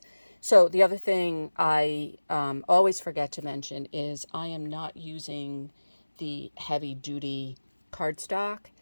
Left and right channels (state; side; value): inverted; both; correlation -1.00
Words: So the other thing I always forget to mention is I am not using the heavy duty cardstock.